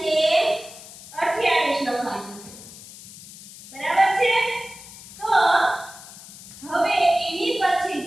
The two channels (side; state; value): left; noise; hiss, 17 dB below the sound